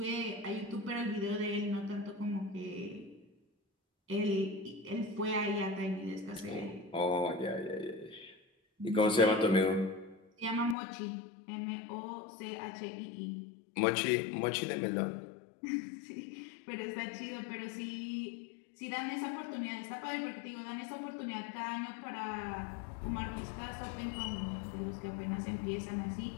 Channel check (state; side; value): drops out; right; at 10.8 s